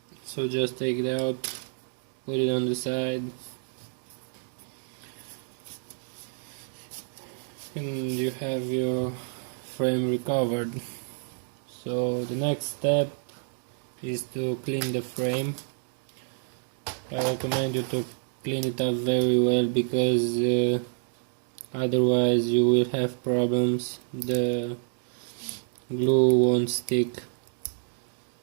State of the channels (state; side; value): silent; left; digital silence